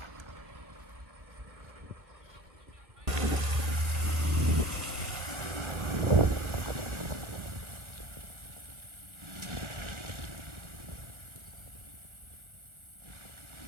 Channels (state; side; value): late; left; 1.3 ms